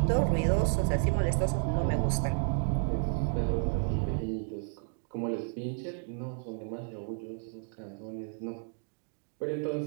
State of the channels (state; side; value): silent; left; 57 dB below the other